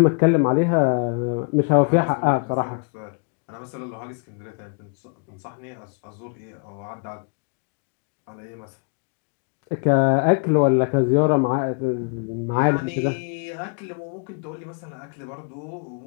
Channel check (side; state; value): right; quieter; 36.7 dB